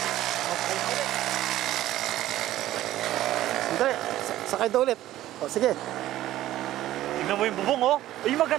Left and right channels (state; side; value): quieter; left; 14.3 dB